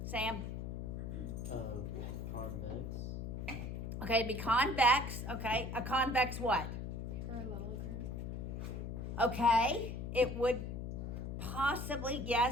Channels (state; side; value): noise; left; hum, 5 dB below the sound